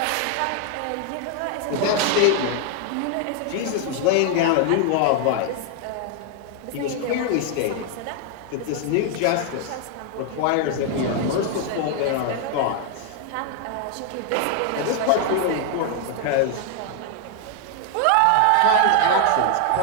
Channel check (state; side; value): different; both; correlation 0.00